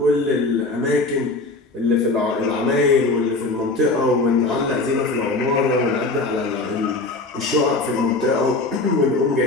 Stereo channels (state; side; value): quieter; right; 3.3 dB